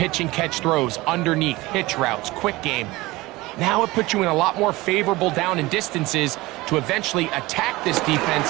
and catch throws underneath, hitch routes, quick game, now it puts you in a lot more favorable down and distances to eventually attack this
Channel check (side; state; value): left; quieter; 20.3 dB